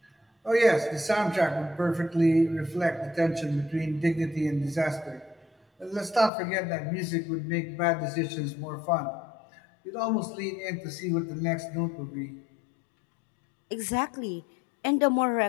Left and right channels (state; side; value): drops out; right; at 6.3 s